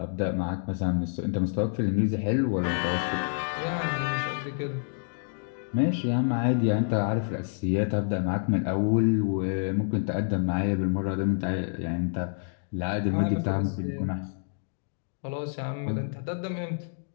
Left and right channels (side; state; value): right; silent; digital silence